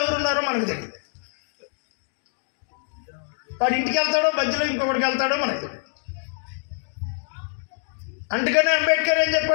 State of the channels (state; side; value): silent; right; digital silence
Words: ఎవరున్నారో మనకు తెలియదు. వాడు ఇంటికి వెళ్తాడో మధ్యలో ఇంకొకటికి వెళ్తాడో మనకు తెలియదు. అందుకనే అంబేద్కర్ ఏం